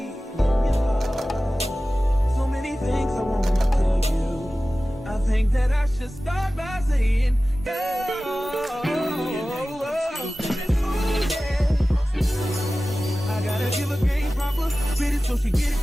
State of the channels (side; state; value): both; normal; correlation 0.96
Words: in your heart. So many things I want to tell you. I think that I should start by saying, girl, I gotta give a game proper. Spit it so she get